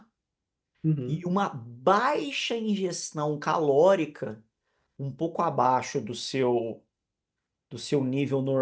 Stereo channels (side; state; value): both; identical; correlation 1.00